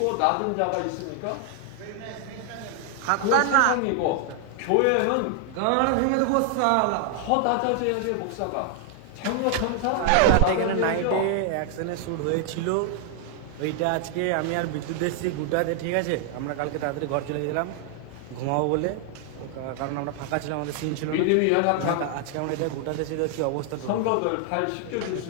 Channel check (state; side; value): different; both; correlation 0.00